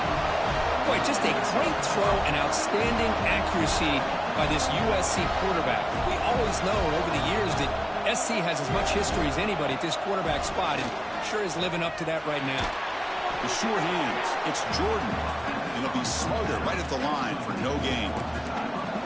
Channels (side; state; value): both; identical; correlation 1.00